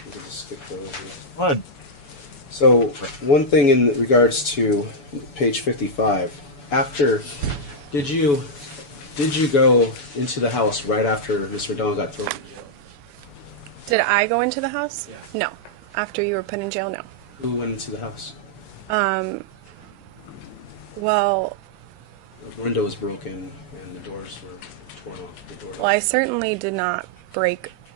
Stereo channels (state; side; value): late; right; 7.0 ms